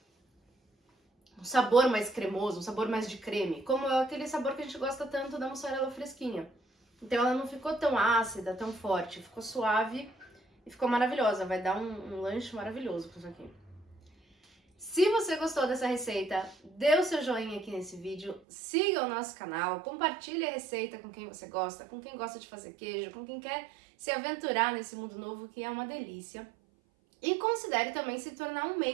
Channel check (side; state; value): left; drops out; at 18.4 s